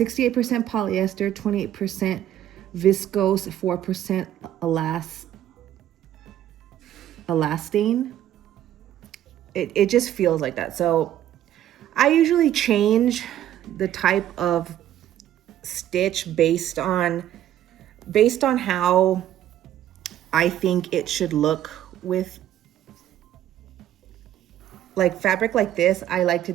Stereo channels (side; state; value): left; quieter; 11.9 dB